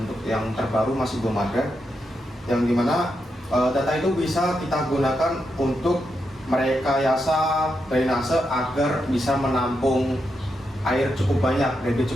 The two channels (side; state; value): both; normal; correlation 0.84